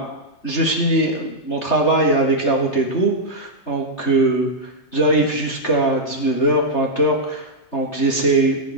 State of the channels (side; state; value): right; late; 3.3 ms